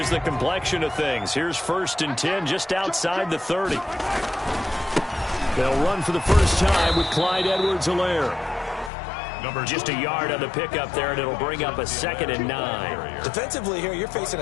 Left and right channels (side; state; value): right; drops out; at 8.9 s